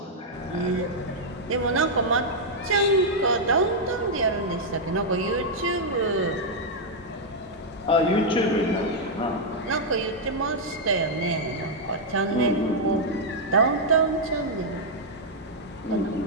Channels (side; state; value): both; normal; correlation -0.04